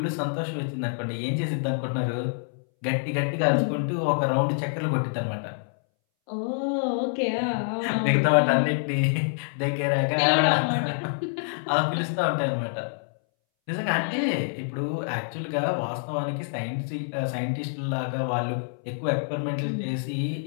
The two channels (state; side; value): silent; right; 61 dB below the other